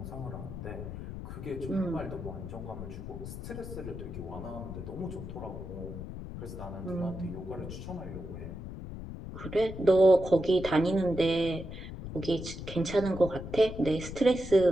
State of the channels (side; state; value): left; noise; rumble, 9 dB below the sound